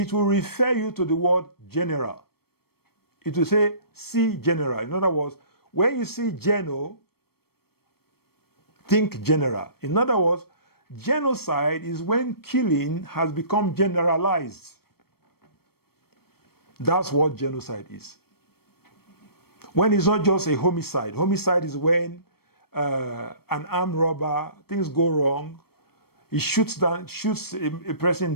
will refer you to the word general. It will say, see general. In other words, when you see geno, think general. In other words, genocide is when killing has become generalized. That's what genocide is. When it's not just a homicide. Homicide is when an armed robber, things go wrong, he shoots a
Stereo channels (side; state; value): right; late; 0.95 ms